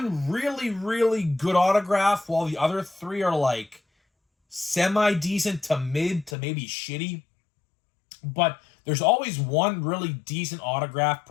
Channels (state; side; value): drops out; right; at 6.4 s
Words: really, really good autograph while the other 3 are like semi-decent to mid to maybe shitty. But there's always one really decent autograph